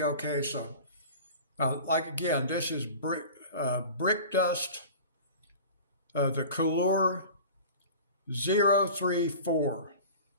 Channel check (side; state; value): both; inverted; correlation -0.38